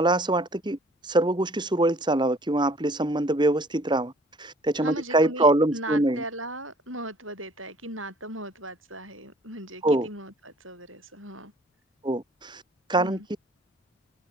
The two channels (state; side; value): normal; both; correlation 0.54